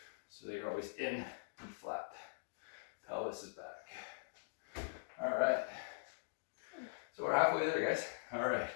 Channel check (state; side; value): silent; right; digital silence